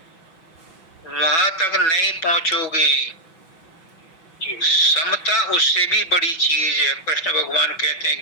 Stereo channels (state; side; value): late; right; 5.3 ms